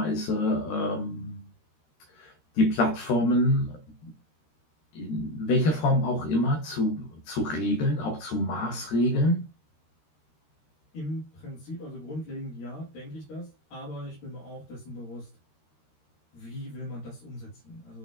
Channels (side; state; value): right; late; 13 ms